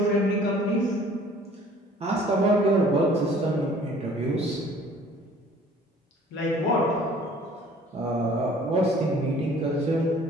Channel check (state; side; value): normal; both; correlation 0.52